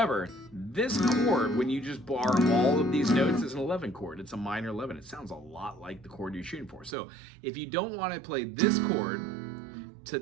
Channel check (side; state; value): left; drops out; at 7.0 s